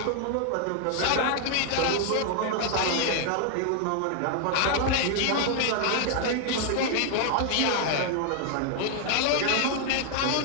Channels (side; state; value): both; different; correlation 0.00